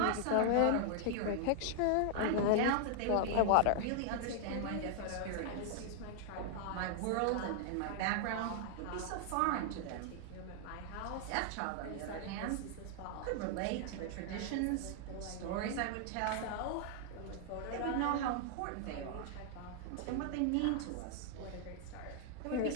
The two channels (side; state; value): both; different; correlation 0.00